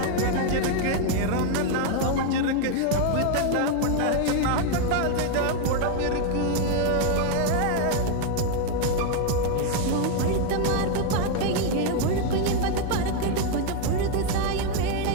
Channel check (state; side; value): different; both; correlation 0.01